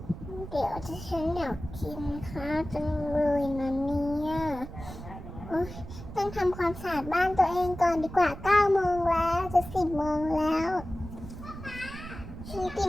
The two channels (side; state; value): right; noise; rumble, 12 dB below the sound